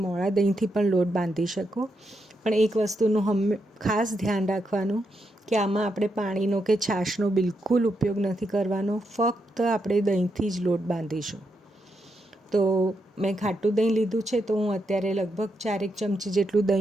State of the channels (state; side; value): normal; both; correlation 0.82